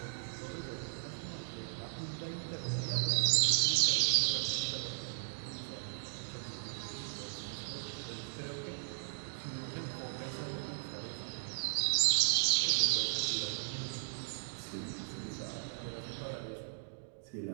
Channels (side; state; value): left; silent; digital silence